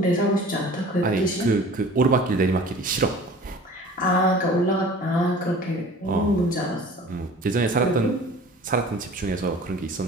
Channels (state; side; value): normal; both; correlation 0.44